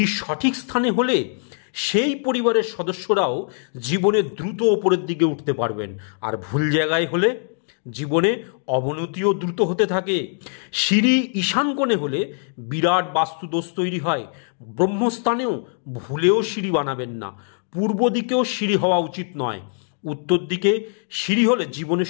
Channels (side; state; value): right; silent; 60 dB below the other